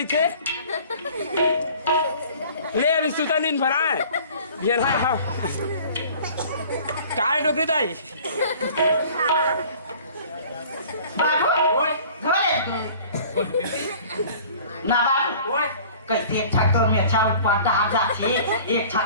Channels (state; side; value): inverted; both; correlation -0.48